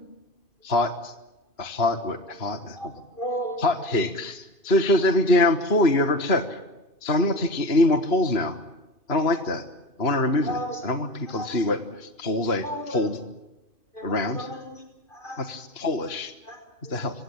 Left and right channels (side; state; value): right; late; 2.5 ms